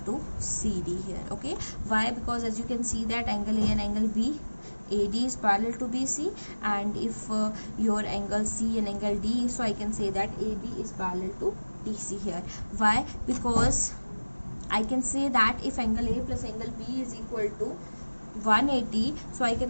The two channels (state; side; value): inverted; both; correlation -1.00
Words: to CD here. Okay, why? Because as you can see that angle A and angle B, AD is parallel to BC, and if your angle C and angle D, so I can say that AB is parallel to DC here. Why? Because I can say that if angle A plus angle B is equal to 180, so I